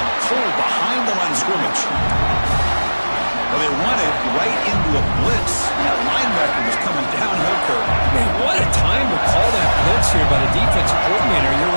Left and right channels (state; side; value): inverted; both; correlation -1.00